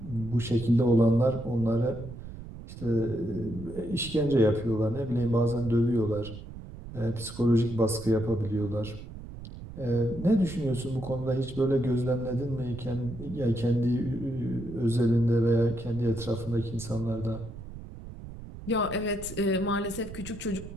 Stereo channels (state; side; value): noise; right; rumble, 13 dB below the sound